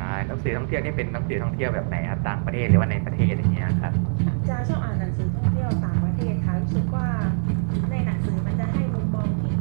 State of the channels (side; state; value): left; silent; 63 dB below the other